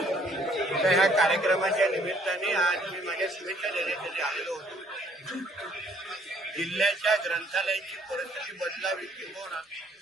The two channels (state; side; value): normal; both; correlation 0.62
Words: ह्या कार्यक्रमाच्या निमित्ताने आज मी माझ्या शुभेच्छा देण्यासाठी आलेलो होतो। जिल्ह्याच्या ग्रंथालयाची परिस्थिती बदलावी किंवा